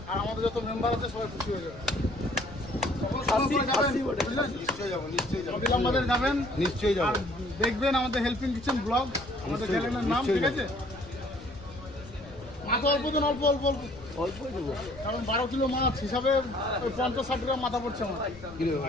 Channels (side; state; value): left; noise; rumble, 18 dB below the sound